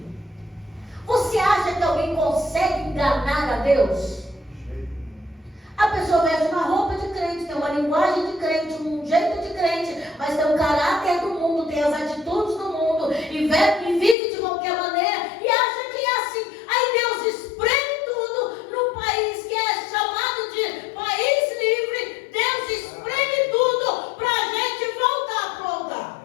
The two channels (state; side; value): drops out; right; at 14.2 s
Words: Você acha que alguém consegue enganar a Deus? A pessoa veste uma roupa de crente, tem uma linguagem de crente, um jeito de crente, mas tem o caráter do mundo, tem as atitudes do mundo, e vive de qualquer maneira, e acha que é assim. Aí Deus espreme tudo no país que é chamado de país livre. Deus espreme tudo para a gente voltar a